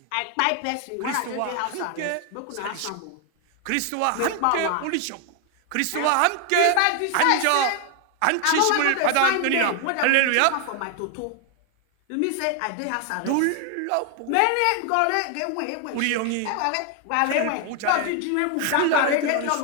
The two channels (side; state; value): both; different; correlation 0.00